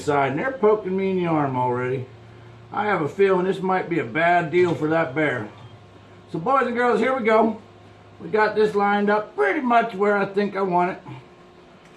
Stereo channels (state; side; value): identical; both; correlation 1.00